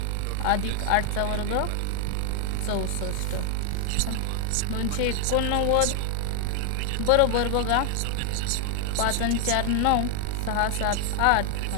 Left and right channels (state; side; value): different; both; correlation 0.00